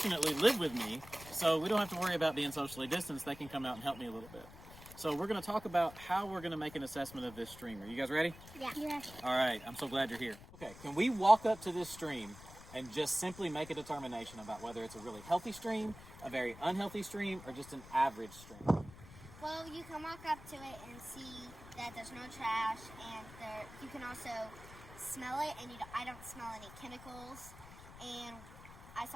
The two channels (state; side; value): noise; left; rumble, 17 dB below the sound